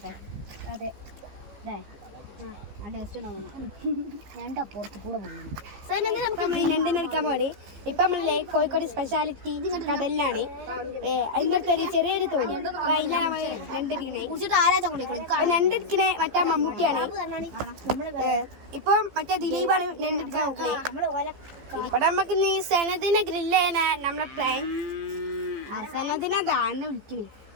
അതെ ആ ടേസ്റ്റ് ഞണ്ട് അപ്പുറത്ത് കൂടെ പോകുന്നു. ഞണ്ടിനെടുക്കാൻ പോണേ. ഇപ്പൊ നമ്മളെ കോഴിക്കോട് സ്പെഷ്യാലിറ്റി കടലിലാണ്. അതിൻ്റെ അടുത്തൊരു ചെറിയൊരു തോണി. അതിലാണ് നമ്മള് ഞണ്ടെടുക്കണേ. ഞണ്ടെടുക്കണേ മറ്റേ മമ്മൂട്ടിയാണ്. ഇപ്പൊ മറ്റേ ദിലീപാണ് ഞണ്ടെടുക്കാൻ നോക്കണേ. ഇവിടെ നമുക്ക് നീ സനദിനെ ഗ്രില്ല് ചെയ്യാനാ നമ്മളെ പ്ലാൻ. സനദിനെ ദാന്നെ വിളിക്കണേ.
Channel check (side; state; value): left; late; 15 ms